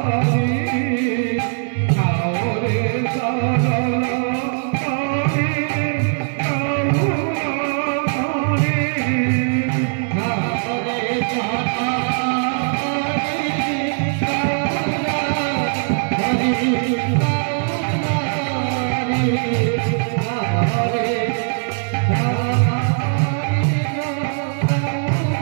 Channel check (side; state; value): left; silent; 66 dB below the other